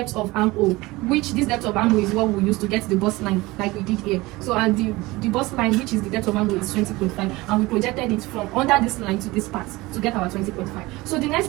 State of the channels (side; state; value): left; quieter; 20.9 dB